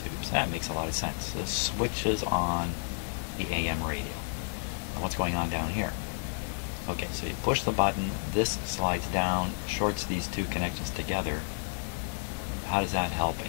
That makes a lot of sense. This switches on the AM radio. Now what's going on down here? Okay, so you push the button, this slides down, shorts these two connections together. How does that help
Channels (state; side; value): silent; right; digital silence